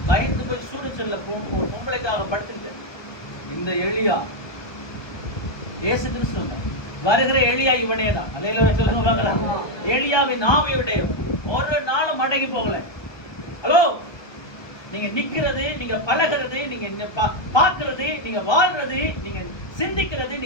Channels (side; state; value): right; late; 1.2 ms